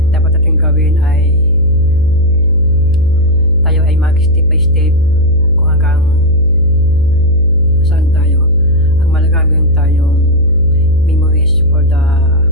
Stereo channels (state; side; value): noise; left; hum, 11 dB below the sound